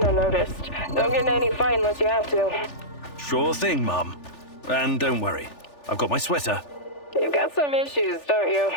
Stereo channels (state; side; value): late; right; 3.4 ms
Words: unnoticed. Don't get in any fight unless you have to. Sure thing, Mum. And don't worry, I've got my sweater. You've got some issues, don't you?